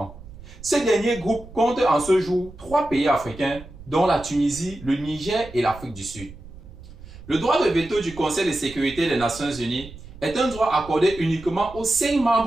Ce dernier groupe compte en ce jour 3 pays africains, dont la Tunisie, le Niger et l'Afrique du Sud. Le droit de veto du Conseil de sécurité des Nations Unies est un droit accordé uniquement aux 5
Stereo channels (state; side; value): noise; right; rumble, 17 dB below the sound